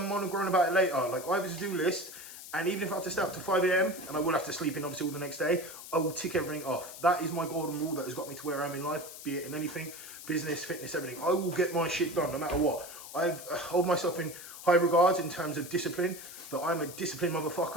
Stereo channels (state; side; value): noise; left; hiss, 13 dB below the sound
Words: moan and groan about it later. Like, I have a to-do list. And even if I have to stay up to 5 AM, and I will have to sleep in obviously all the next day, I will tick everything off. That is my golden rule that has got me to where I am in life, be it in anything, business, fitness, everything. I will get my shit done no matter what. I hold myself in high regards in terms of discipline, but I'm a disciplined